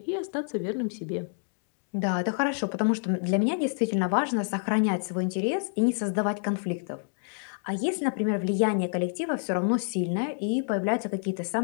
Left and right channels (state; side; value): silent; right; digital silence